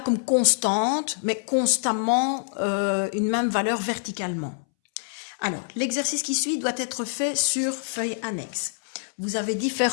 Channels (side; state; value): right; silent; 61 dB below the other